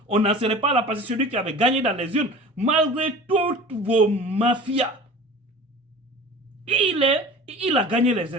on n'en serait pas là parce que celui qui avait gagné dans les urnes, malgré toutes vos mafias, il a gagné les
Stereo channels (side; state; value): both; normal; correlation 0.40